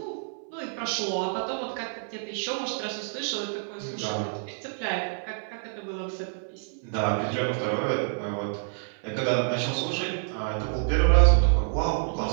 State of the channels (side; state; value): left; silent; 59 dB below the other